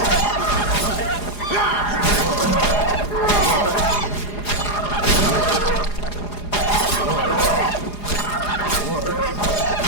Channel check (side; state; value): right; late; 4.9 ms